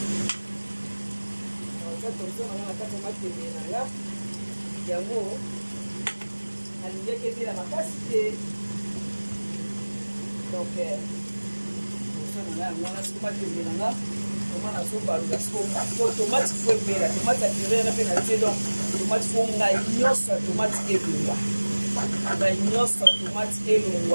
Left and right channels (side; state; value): both; inverted; correlation -1.00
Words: yango alingiaki ebela makasi te donc tonson nanga yango wana siko matembele nanga toma nazobalula siko tomate fo ebela tomate ya purere mpe natie donc tomate fo ngai nyonso ya tomate